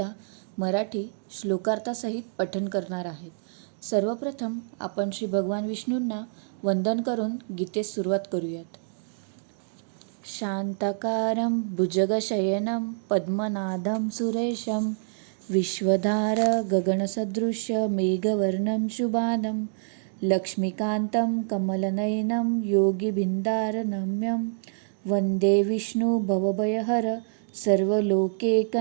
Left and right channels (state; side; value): silent; left; digital silence